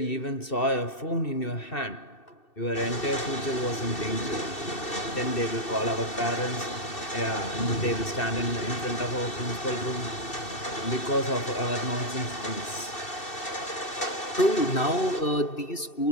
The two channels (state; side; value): late; right; 2.7 ms